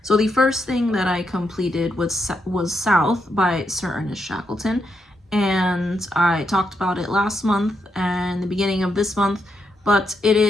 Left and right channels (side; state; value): both; normal; correlation 0.81